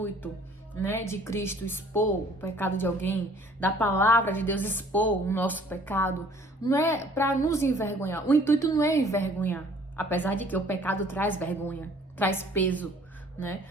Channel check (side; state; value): both; normal; correlation 0.55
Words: né, de Cristo expor o pecado de alguém, da palavra de Deus expor o nosso pecado, não é para nos envergonhar. O intuito não é envergonhar, apesar de que o pecado traz vergonha, traz peso, né?